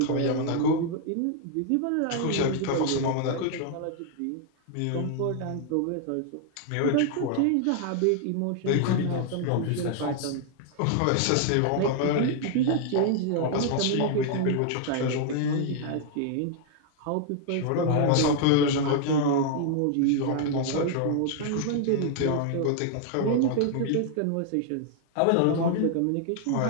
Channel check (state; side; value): different; both; correlation 0.00